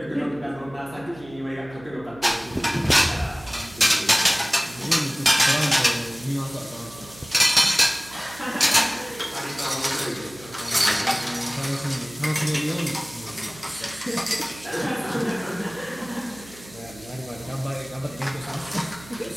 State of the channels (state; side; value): noise; right; hum, 19 dB below the sound